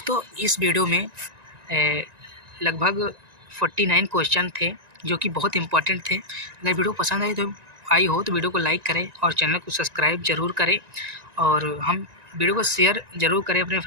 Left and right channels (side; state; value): left; late; 1.9 ms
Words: इस वीडियो में लगभग 49 क्वेश्चन थे जो कि बहुत इंपॉर्टेंट थे। अगर वीडियो पसंद आई हो तो वीडियो को लाइक करें और चैनल को सब्सक्राइब जरूर करें और हम वीडियो को शेयर ज़रूर करें अपने